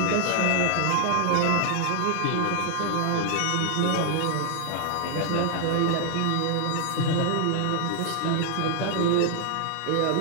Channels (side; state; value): both; different; correlation 0.00